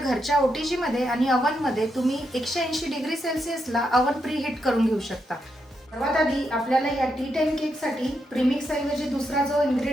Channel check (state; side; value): normal; both; correlation 0.82